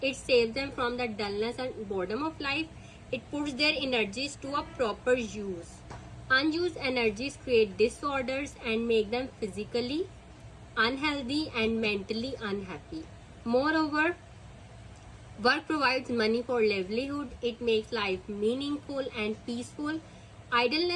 It saves them from the dullness and boredom of life. It puts their energies to a proper use. Unused energies create disorders and make them physically unhealthy and mentally unhappy. Moreover, work provides money for livelihood. It makes life meaningful and peaceful.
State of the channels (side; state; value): both; identical; correlation 1.00